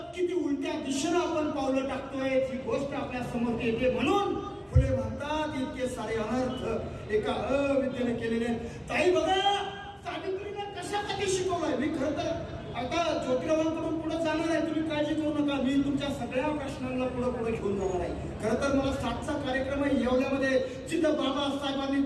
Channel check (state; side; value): identical; both; correlation 1.00